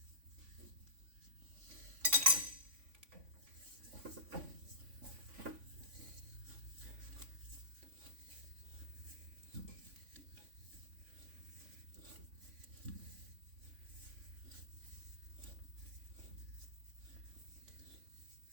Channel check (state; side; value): late; left; 3.5 ms